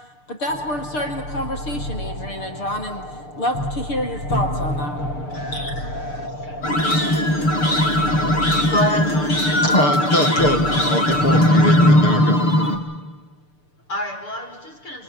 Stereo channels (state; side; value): late; right; 6.7 ms